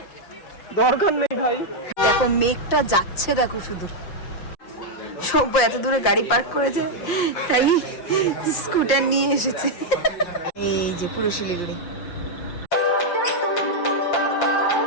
দরকার নেই ভাই। দেখো মেঘটা যাচ্ছে, দেখো শুধু। সব এত দূরে গাড়ি পার্ক করেছে, তাই স্কুটার নিয়ে এসেছে। এই যে পুরো শিলিগুড়ি।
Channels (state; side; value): late; right; 5.7 ms